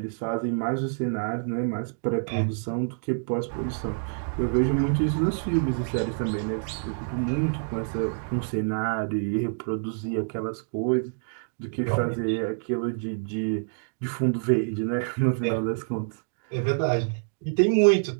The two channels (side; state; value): left; silent; digital silence